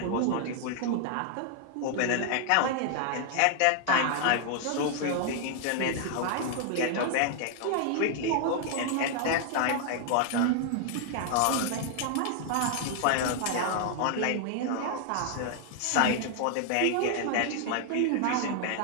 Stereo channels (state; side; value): different; both; correlation 0.00